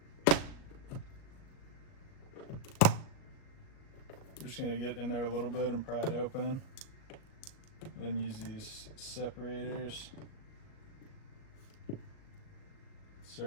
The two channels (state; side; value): late; right; 38 ms